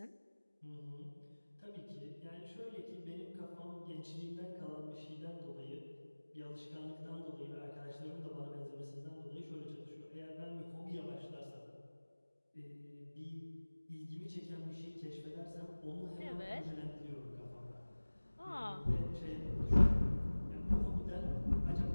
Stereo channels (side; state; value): both; inverted; correlation -1.00